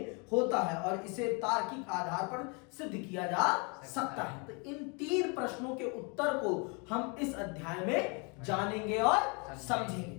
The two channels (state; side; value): quieter; right; 33.3 dB